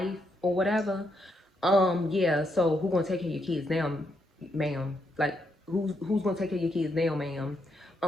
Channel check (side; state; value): both; normal; correlation 0.79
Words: or whatever. Yeah, so who gonna take care of your kids now, ma'am? Like, who's gonna take care of your kids now, ma'am?